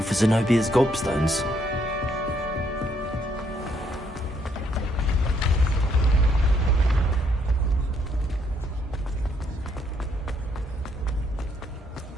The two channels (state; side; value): normal; both; correlation 0.71